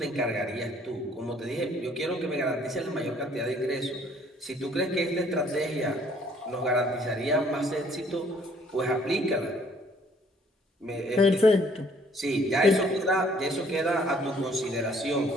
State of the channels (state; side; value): normal; both; correlation 0.61